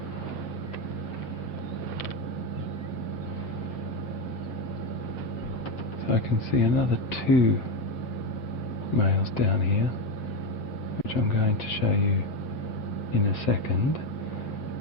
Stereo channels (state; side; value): late; right; 7.7 ms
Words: So I can see another 2 males down here, which I'm going to show you in a second,